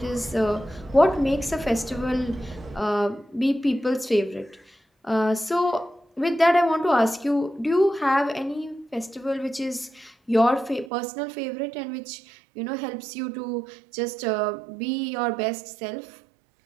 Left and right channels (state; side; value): drops out; left; at 10.9 s